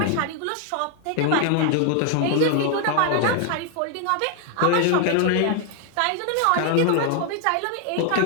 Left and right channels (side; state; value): both; different; correlation 0.00